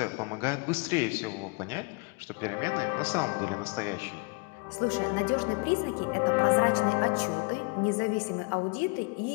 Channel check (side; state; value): right; quieter; 30.6 dB